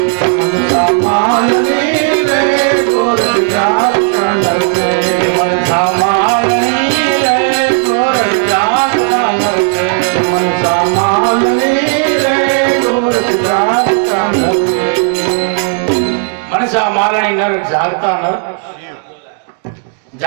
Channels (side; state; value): left; silent; 56 dB below the other